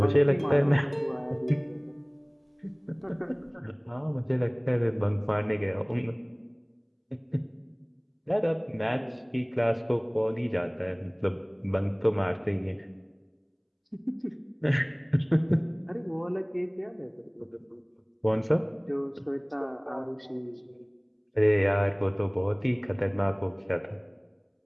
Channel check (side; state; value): both; identical; correlation 1.00